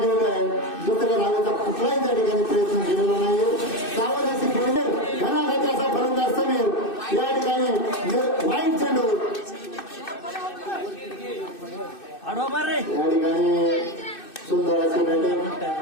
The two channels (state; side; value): late; right; 2.6 ms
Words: केलेलं आहे. दुसऱ्या धावेचा कुठलाही त्या ठिकाणी प्रयत्न केलेला नाहीये. सावध अशी खेळले घनाघाती असा फलंदाज समीर या ठिकाणी वाईट चेंडू या ठिकाणी सुंदर असे बॅटिंग